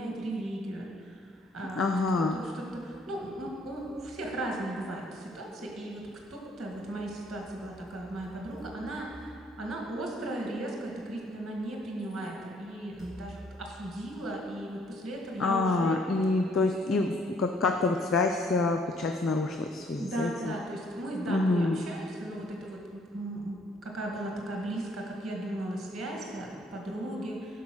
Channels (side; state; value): both; normal; correlation 0.64